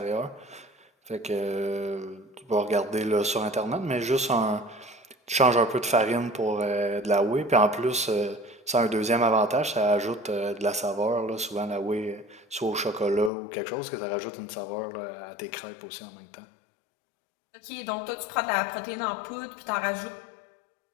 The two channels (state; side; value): drops out; right; at 13.3 s